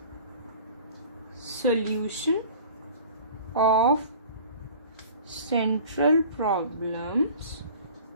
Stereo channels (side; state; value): both; inverted; correlation -0.44